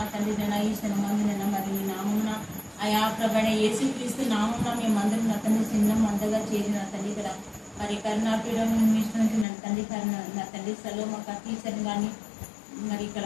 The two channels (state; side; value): drops out; right; at 9.5 s